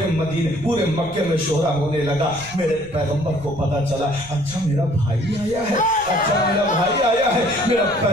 मदीने, पूरे मक्के में शोहरा होने लगा। मेरे पैगंबर को पता चला, अच्छा मेरा भाई आया है, अच्छा मेरा भाई आया है। मेरा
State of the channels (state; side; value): noise; left; rumble, 20 dB below the sound